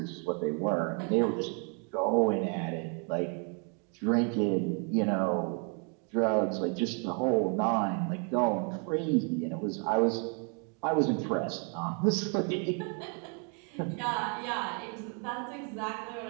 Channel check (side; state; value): left; quieter; 38.9 dB